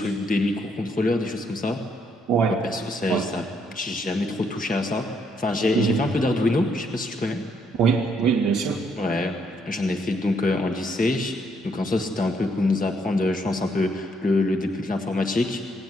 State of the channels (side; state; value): both; normal; correlation 0.72